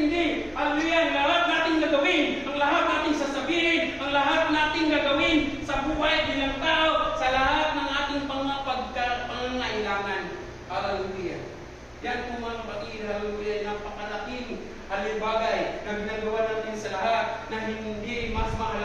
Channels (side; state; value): both; identical; correlation 1.00